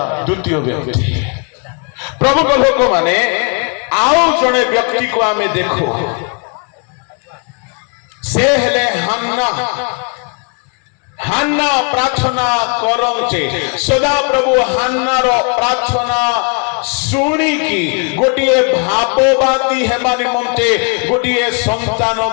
ଦ୍ୱିତୀୟ ବ୍ୟକ୍ତି। ପ୍ରଭୁଙ୍କ ଲୋକମାନେ ଆଉ ଜଣେ ବ୍ୟକ୍ତିକୁ ଆମେ ଦେଖୁ, ସେ ହେଲେ ହାନ୍ନା। ହାନ୍ନା ପ୍ରାର୍ଥନା କରନ୍ତେ ସଦାପ୍ରଭୁ ହାନ୍ନାର ପ୍ରାର୍ଥନା ଶୁଣିକି ଗୋଟିଏ ଭାବବାଦୀ ହେବା ନିମନ୍ତେ ଗୋଟିଏ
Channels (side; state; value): right; quieter; 37.3 dB